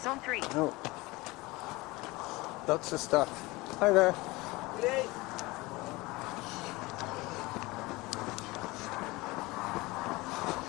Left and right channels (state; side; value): quieter; right; 22.0 dB